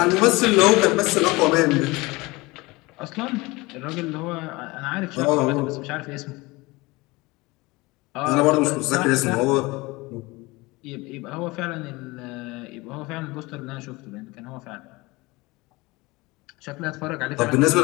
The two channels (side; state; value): right; quieter; 22.6 dB